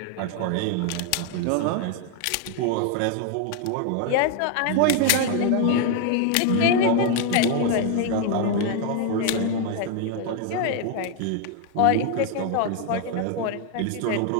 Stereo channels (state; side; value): different; both; correlation 0.01